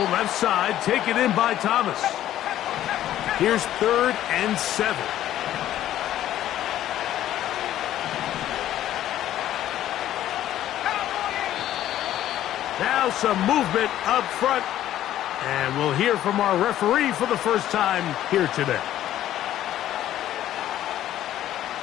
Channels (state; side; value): quieter; right; 12.6 dB